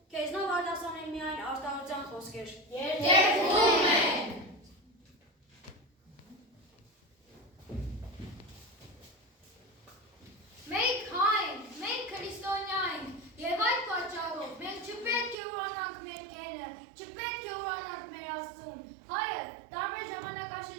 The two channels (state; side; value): drops out; left; at 15.4 s